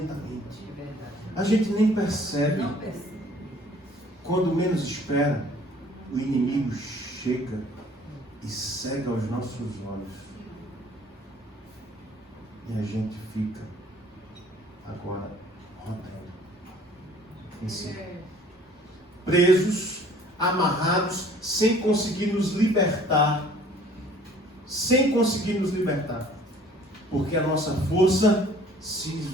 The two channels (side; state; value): both; normal; correlation 0.54